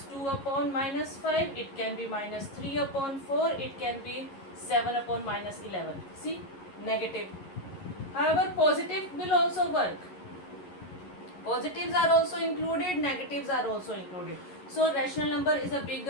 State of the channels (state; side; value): late; right; 11 ms